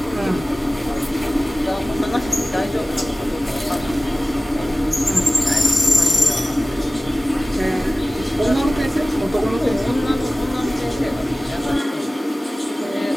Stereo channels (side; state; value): both; normal; correlation 0.97